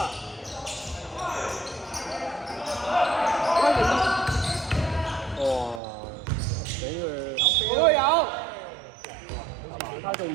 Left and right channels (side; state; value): left; drops out; at 5.8 s